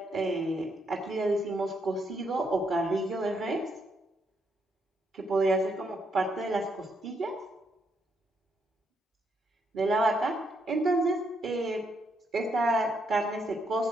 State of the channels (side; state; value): both; normal; correlation 0.76